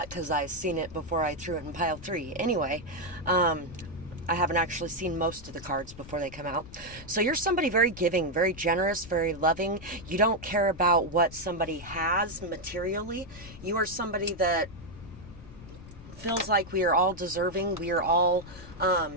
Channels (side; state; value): left; noise; rumble, 16 dB below the sound